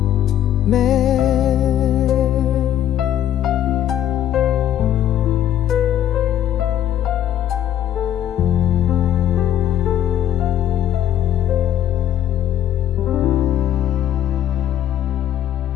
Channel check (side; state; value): right; quieter; 11.2 dB